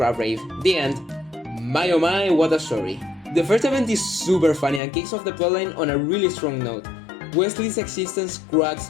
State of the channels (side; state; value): right; drops out; at 4.8 s